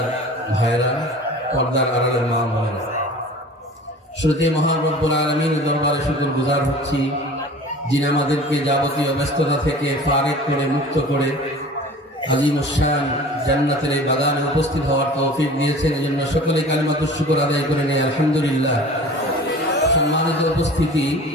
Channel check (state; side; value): normal; both; correlation 0.42